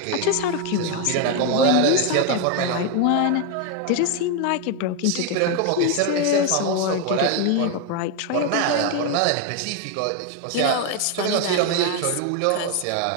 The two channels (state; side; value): different; both; correlation 0.01